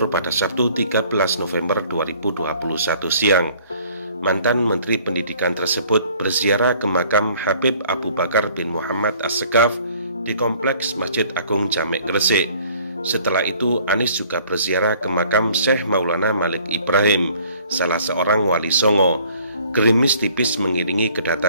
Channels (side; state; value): both; inverted; correlation -0.57